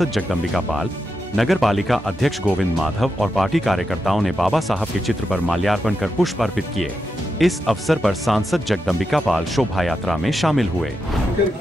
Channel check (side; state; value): both; normal; correlation 0.87